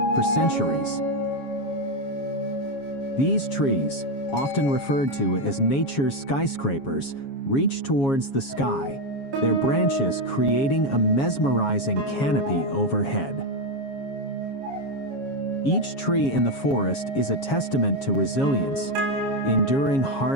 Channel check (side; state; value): right; late; 7.3 ms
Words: for centuries. These trees, often referred to as nature's skyscrapers, reach towards the sky, their branches creating a mesmerizing canopy overhead. Each tree in the forest is a testament to resilience, enduring